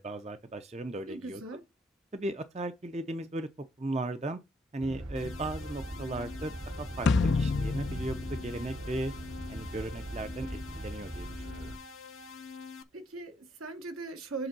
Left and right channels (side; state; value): both; normal; correlation 0.73